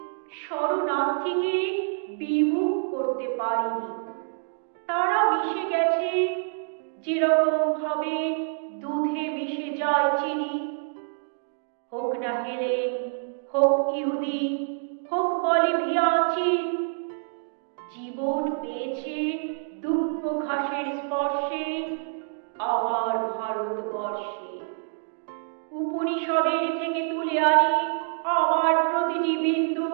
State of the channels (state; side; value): silent; left; digital silence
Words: শরণার্থীকে বিমুখ করতে পারেনি। তারা মিশে গেছে যেরকম ভাবে দুধে মিশে যায় চিনি। হোক না হেলেন, হোক ইহুদি, হোক বলিভিয়ানচি, জীবন পেয়েছে দুব্য ঘাসের স্পর্শে আমার ভারতবর্ষে। উপনিষদের থেকে তুলে আনি আমার প্রতিটি বিন্দু।